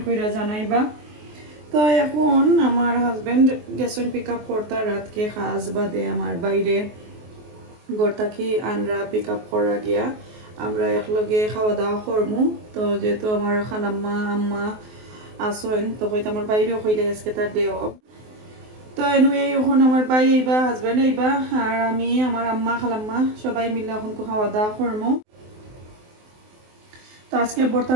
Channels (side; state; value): left; late; 23 ms